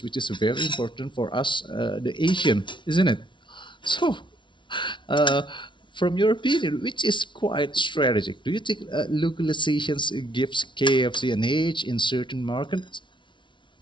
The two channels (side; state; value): right; late; 0.24 ms